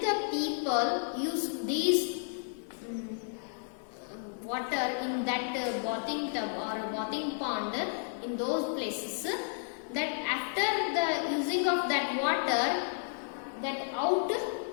people use these water in that bathing tub or bathing pond in those places, that after the using of that water, that out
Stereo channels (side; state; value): right; silent; digital silence